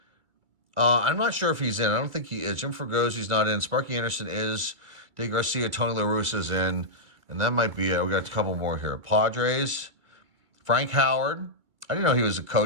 I'm not sure if he's in. I don't think he is. Jim Fregosi's not in. Sparky Anderson is. Dave Garcia, Tony La Russa's in. And that might be it. We got a couple more here. Padres. Frank Howard. I didn't know he was a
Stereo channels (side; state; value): left; late; 2.2 ms